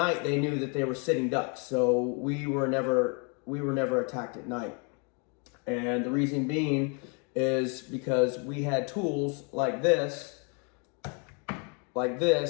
they knew that they were sitting ducks, so we were never attacked at night. And the reason being is because we had tools like this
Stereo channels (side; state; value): right; quieter; 35.6 dB